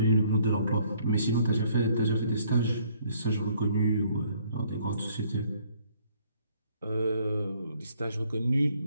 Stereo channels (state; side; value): inverted; both; correlation -0.63